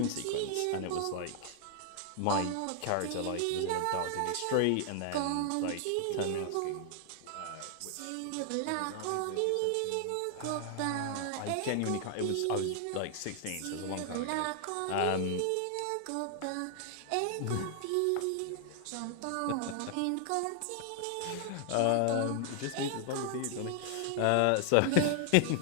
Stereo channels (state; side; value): different; both; correlation 0.00